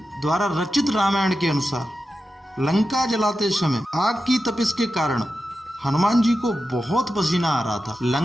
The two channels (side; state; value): both; normal; correlation 0.91